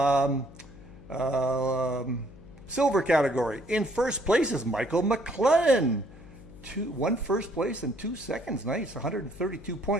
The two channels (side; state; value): left; noise; hum, 19 dB below the sound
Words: silver category. In first place is Michael McLennan. One first place and 2 seconds. Nice, 132